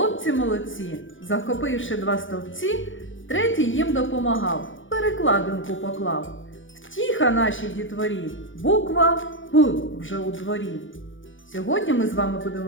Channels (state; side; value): late; right; 0.56 ms